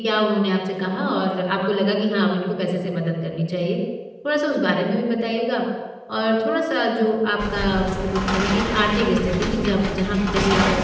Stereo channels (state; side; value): identical; both; correlation 1.00